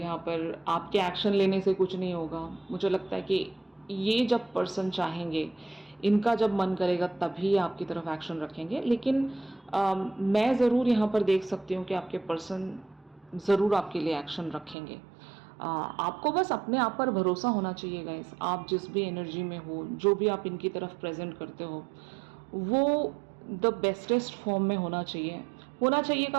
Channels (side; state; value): left; drops out; at 14.8 s